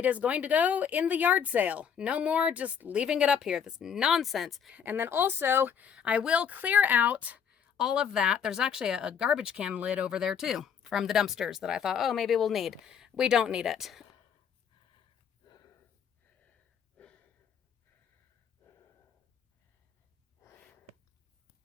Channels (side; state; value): right; quieter; 7.6 dB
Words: is going to go in the yard sale. No more just leaving it up here. This nonsense. And then also, I will clear out all of that. There's actually a garbage can lid over there too from the dumpsters that I thought, oh, maybe we'll need. We don't need it.